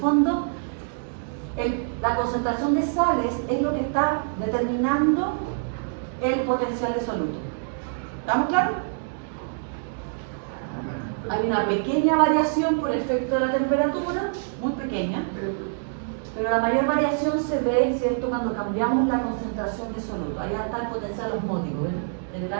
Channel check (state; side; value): silent; left; digital silence